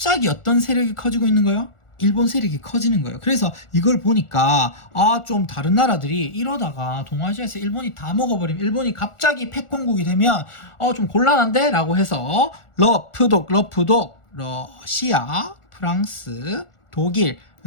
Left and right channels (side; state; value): right; late; 1.4 ms